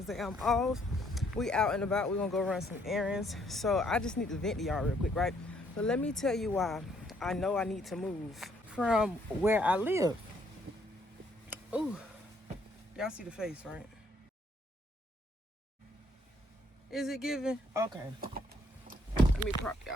I'm off. We out and about. We're gonna go run some errands. So I just need to vent to y'all real quick, right? So let me tell you why I know I need to move from where I live. Ooh, y'all see the face, right? Is it giving? Okay. Let me prop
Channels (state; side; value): normal; both; correlation 0.68